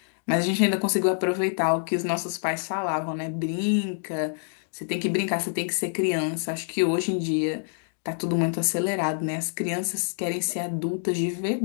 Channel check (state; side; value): silent; right; digital silence